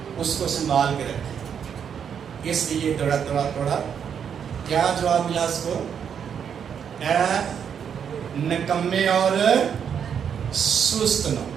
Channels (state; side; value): quieter; left; 7.8 dB